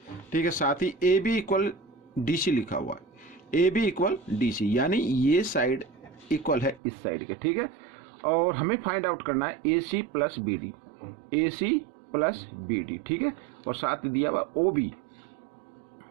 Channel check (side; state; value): left; drops out; at 6.8 s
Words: ठीक है, साथ ही AB इक्वल DC लिखा हुआ है। AB इक्वल DC यानी ये साइड इक्वल है इस साइड के। ठीक है, और हमें फाइंड आउट करना है AC plus BD, AC plus BD। ठीक है, और साथ ही दिया हुआ OB,